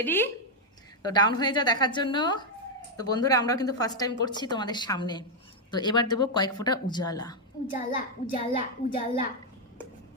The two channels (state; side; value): normal; both; correlation 0.01